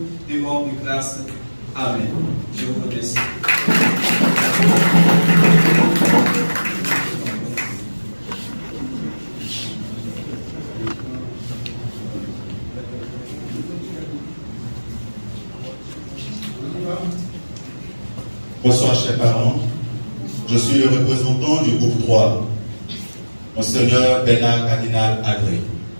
te rendent grâce. Amen. Je vous remercie. Bonsoir chers parents, je suis le représentant du groupe 3, Monseigneur Bernard Cardinal Agré.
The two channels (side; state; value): both; inverted; correlation -1.00